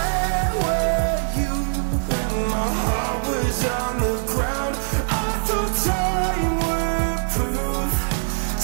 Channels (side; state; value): left; silent; digital silence